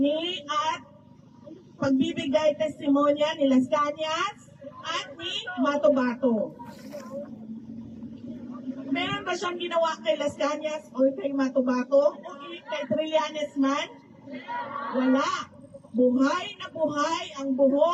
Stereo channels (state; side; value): identical; both; correlation 1.00